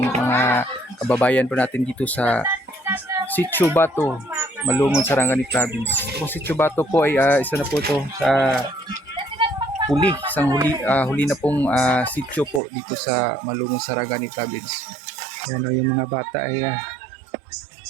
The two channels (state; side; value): drops out; left; at 12.6 s